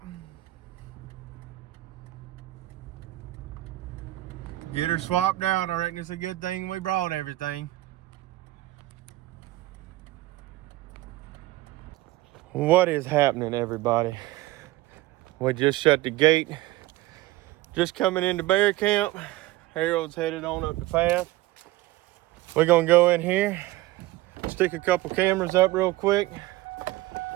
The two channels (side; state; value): left; quieter; 17.8 dB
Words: Get her swapped out. I reckon it's a good thing we brought everything. What is happening, everybody? We just shut the gate. Just coming into bear camp. Harold's headed on up the path. We're gonna go in here, stick a couple cameras up real quick,